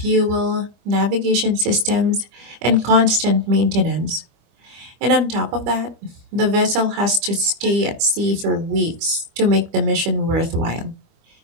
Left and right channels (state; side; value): late; left; 25 ms